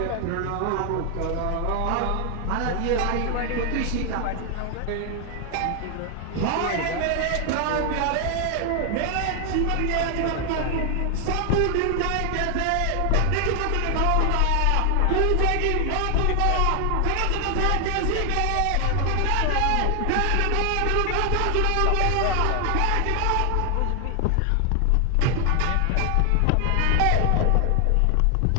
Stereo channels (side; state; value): both; different; correlation 0.00